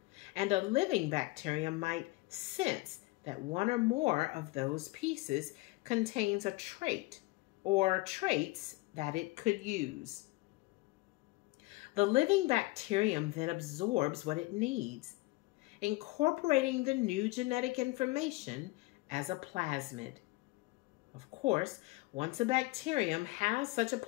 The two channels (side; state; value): right; quieter; 21.8 dB